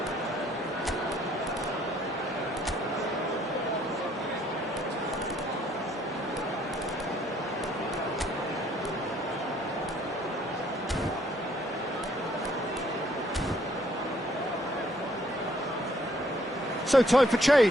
So time for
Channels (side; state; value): both; normal; correlation 0.65